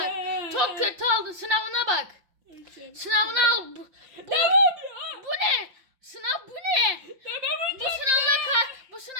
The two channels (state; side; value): late; left; 5.7 ms